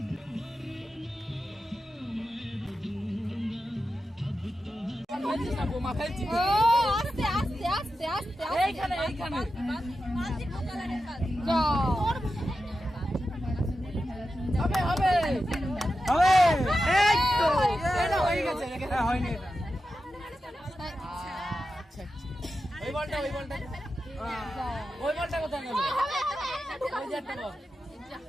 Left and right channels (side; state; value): both; normal; correlation 0.91